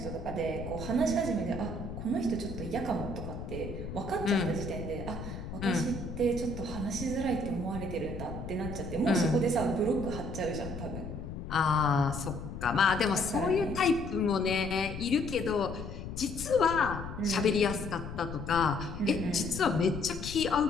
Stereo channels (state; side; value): noise; left; rumble, 8 dB below the sound